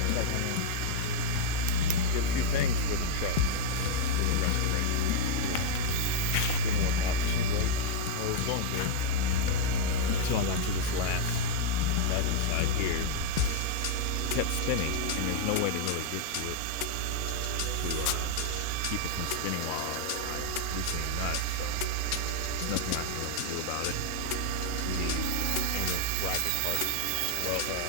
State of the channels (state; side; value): different; both; correlation -0.01